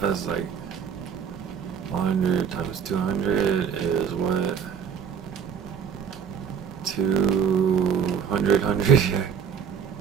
That's like 100 times 200 is what? 200, 100, yeah.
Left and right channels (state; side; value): quieter; left; 7.3 dB